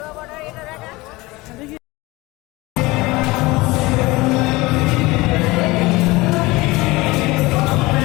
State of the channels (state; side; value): quieter; right; 21.6 dB